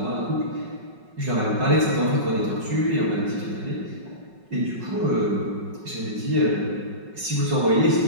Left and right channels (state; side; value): late; left; 5.3 ms